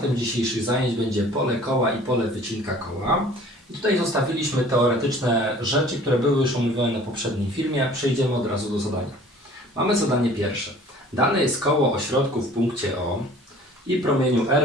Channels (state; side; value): normal; both; correlation 0.49